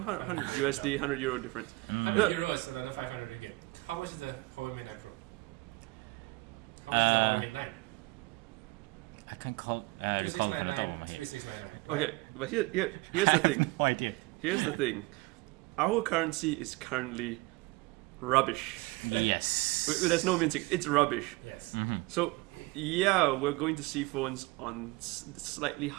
100 euro USD, jump. 100 euro difference. 100 euro is another 500 ringgit. How much is the Huawei Mate 9 Pro? How much is the Huawei Mate 9? I can't call. 2699, 3699. Right? Okay, but here's the thing. No idea. Here's the thing. Our currency is currently rubbish. Yes. There's no mincing. It's rubbish. Yes. So, yeah, we're going to see phones on slightly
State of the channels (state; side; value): quieter; left; 23.5 dB